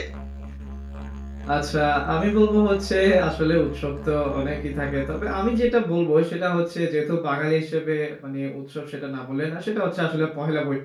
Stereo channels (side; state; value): both; identical; correlation 1.00